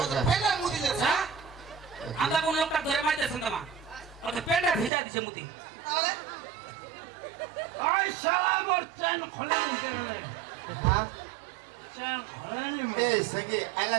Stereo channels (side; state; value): left; drops out; at 4.9 s